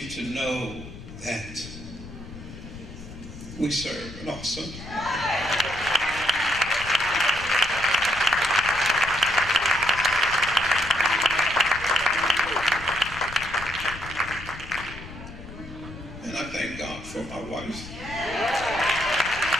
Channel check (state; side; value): noise; left; rumble, 14 dB below the sound